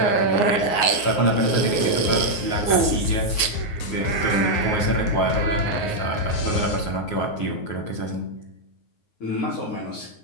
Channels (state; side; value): late; right; 9.5 ms